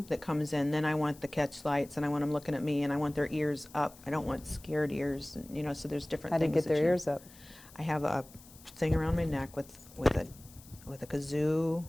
comes in. Then I want the catch lights, and I want them looking at me, and I want their ears up. I don't want scared ears, and, so there's different How do you things. get their that ears up? I have a thing around my neck with a kazoo,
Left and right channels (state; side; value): noise; left; hiss, 22 dB below the sound